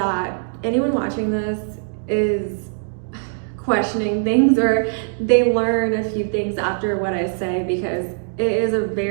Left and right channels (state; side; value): silent; left; digital silence